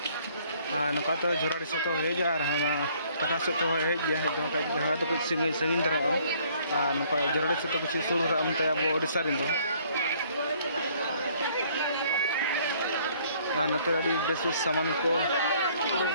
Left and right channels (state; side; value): inverted; both; correlation -0.61